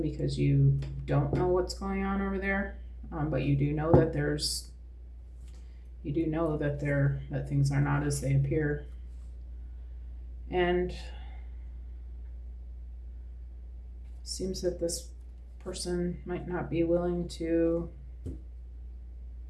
because you don't know what's going on over there, but you do know that that things are not as they appear. And seems that this person might not be willing to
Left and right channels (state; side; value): identical; both; correlation 1.00